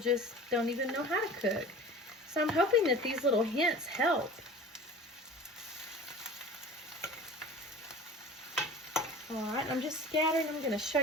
don't even know how to cook. So I'm hoping that these little hints help. All right, I'm just scattering. I'm going to show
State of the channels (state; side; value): normal; both; correlation 0.39